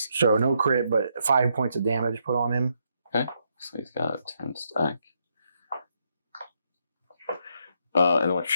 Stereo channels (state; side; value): inverted; both; correlation -0.77